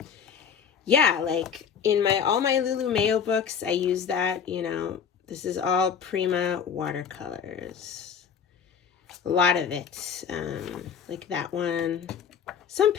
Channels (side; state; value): right; quieter; 7.2 dB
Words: yeah, like in all my Lulu Mayo books, I use that, you know. This is all Prima watercolors. A lot of it, like that one. Some